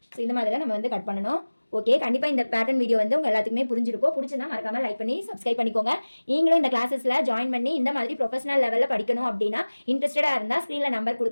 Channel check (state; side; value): inverted; both; correlation -1.00